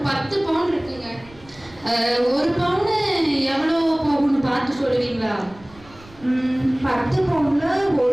10 பவுன் இருக்குங்க. ஒரு பவுன் எவ்வளோ போகும்னு பார்த்து சொல்லுவீங்களா? 10 பவுன்ல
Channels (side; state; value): right; noise; rumble, 24 dB below the sound